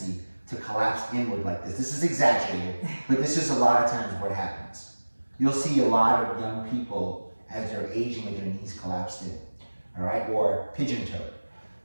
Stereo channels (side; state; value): both; inverted; correlation -1.00